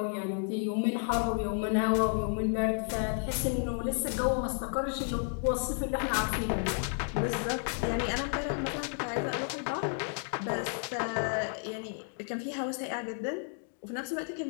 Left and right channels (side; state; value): right; silent; 56 dB below the other